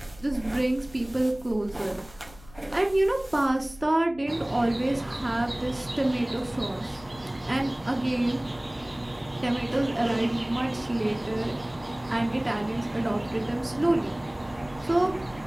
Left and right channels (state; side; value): noise; left; hum, 21 dB below the sound